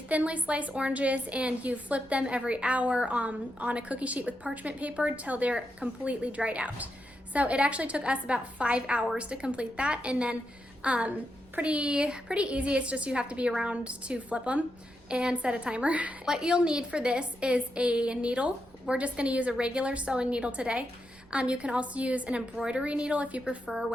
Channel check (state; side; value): noise; right; rumble, 27 dB below the sound